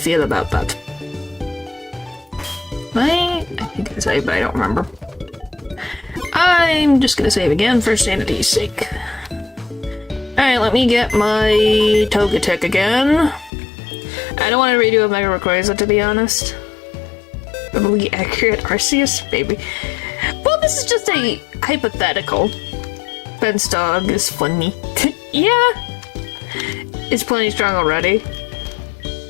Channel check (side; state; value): right; drops out; at 13.5 s